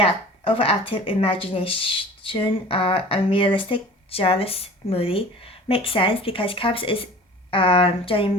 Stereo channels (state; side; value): normal; both; correlation 0.43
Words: imagination, unrealistic, jealous, moody. Makes sense because cups is generally